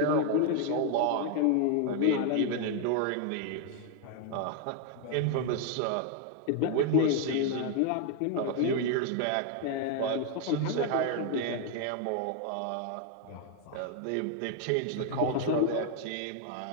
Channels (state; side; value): different; both; correlation 0.01